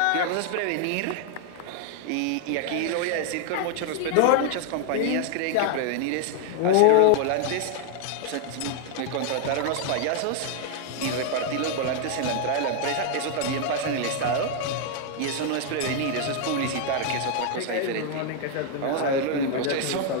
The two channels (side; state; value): both; different; correlation 0.00